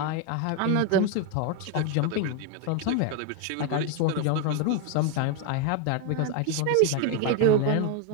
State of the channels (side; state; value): both; different; correlation 0.01